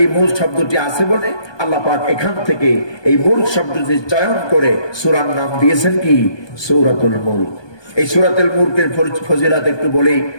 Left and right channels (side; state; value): right; late; 1.2 ms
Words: এই মুলক শব্দটি আছে বলে আল্লাহ পাক এখান থেকে এই মুলক শব্দটি চয়ন করে সূরার নাম দিয়েছেন কি? সূরাতুল মুলক। এই সূরাতুল মুলকের ফজিলত একটু বলেই